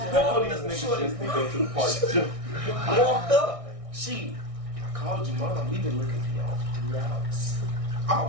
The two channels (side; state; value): left; late; 1.6 ms